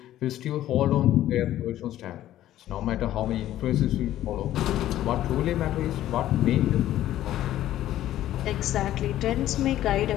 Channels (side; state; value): right; quieter; 13.2 dB